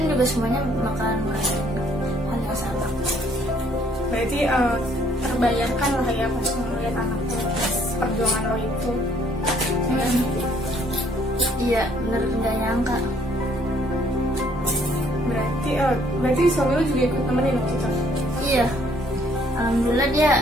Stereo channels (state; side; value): normal; both; correlation 0.64